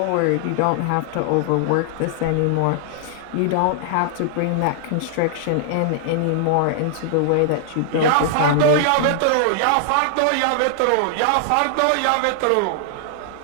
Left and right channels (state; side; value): different; both; correlation -0.01